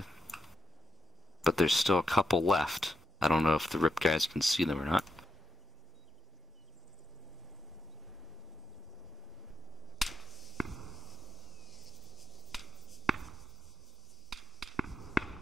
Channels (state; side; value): normal; both; correlation 0.83